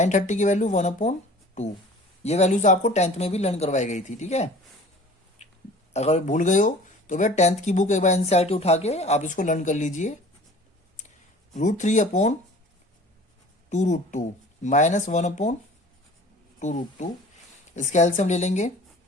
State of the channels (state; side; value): normal; both; correlation 0.45